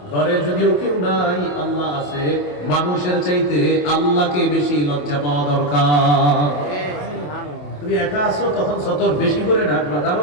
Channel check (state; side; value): late; right; 27 ms